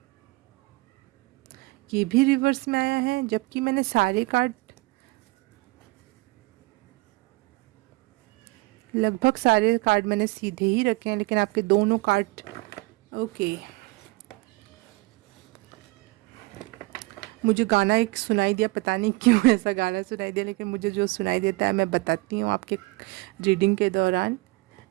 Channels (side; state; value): left; quieter; 24.3 dB